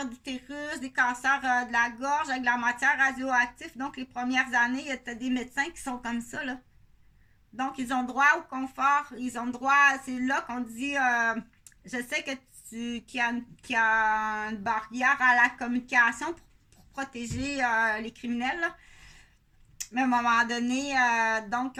d'utérus, des cancers de la gorge avec de la matière radioactive. Donc, les premières années, il y a des médecins qui sont comme ça, là. Donc, ils ont droit au confort. Ils ont droit, c'est là qu'on dit, je sais que qu'il y a une barrière à la communication pour protéger les criminels, là. Mais à un moment donné, donc,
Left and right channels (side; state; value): both; identical; correlation 1.00